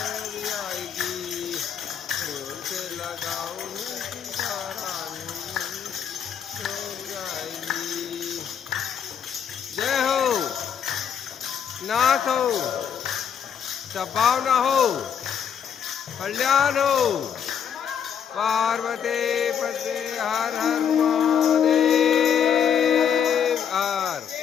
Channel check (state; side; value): quieter; right; 8.1 dB